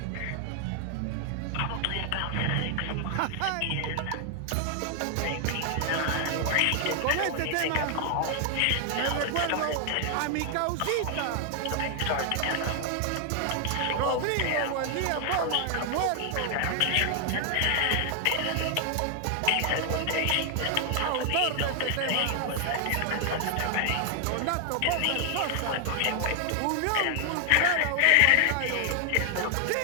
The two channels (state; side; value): different; both; correlation 0.00